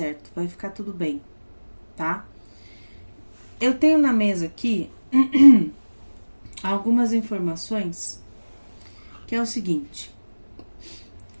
vai ficar tudo bem, tá? Eu tenho na mesa aqui algumas informações, que é o seguinte:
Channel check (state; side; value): inverted; both; correlation -1.00